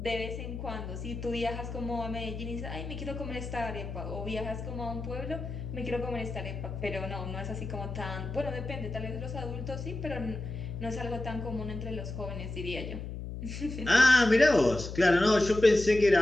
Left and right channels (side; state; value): left; noise; hum, 7 dB below the sound